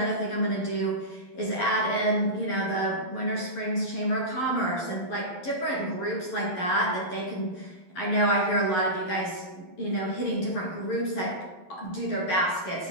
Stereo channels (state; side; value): late; right; 11 ms